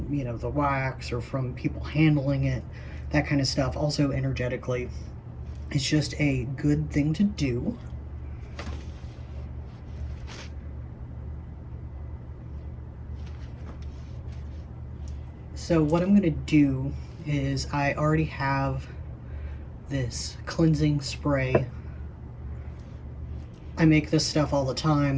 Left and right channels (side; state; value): both; identical; correlation 1.00